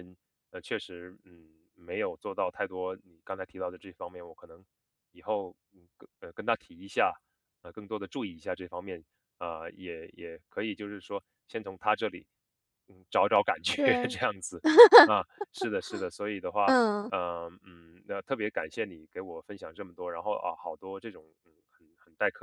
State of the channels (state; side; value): identical; both; correlation 1.00